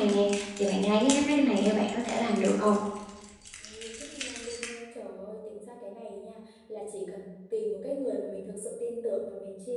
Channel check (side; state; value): both; identical; correlation 1.00